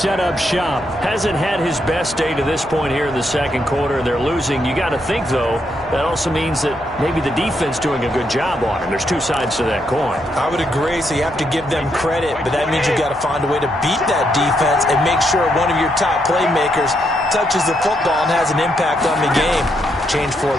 up shop. Hasn't had his best day to this point here in the second quarter. They're losing. You got to think, though, that also means that maybe the defense doing a good job on him. There's two sides to that coin. I would agree, so you have to give them credit, but that means you got to find a way to beat that defense and make sure one of your top playmakers touches the football and has an impact on the game. Change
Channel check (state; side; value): normal; both; correlation 0.78